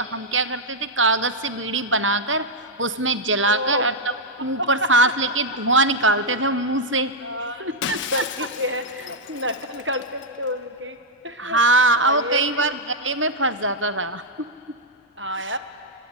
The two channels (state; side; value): normal; both; correlation -0.02